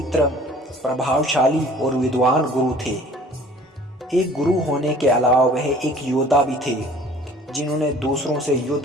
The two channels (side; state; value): both; normal; correlation 0.50